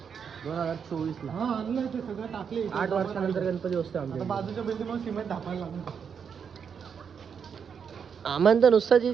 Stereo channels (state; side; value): quieter; left; 6.9 dB